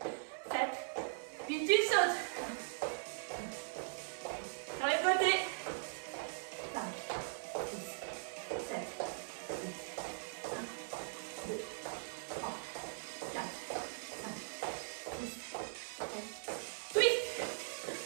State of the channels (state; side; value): silent; left; 51 dB below the other